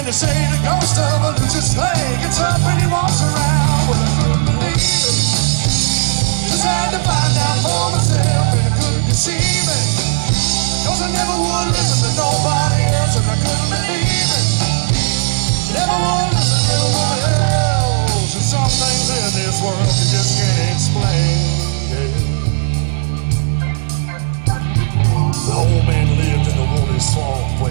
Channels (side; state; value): left; silent; digital silence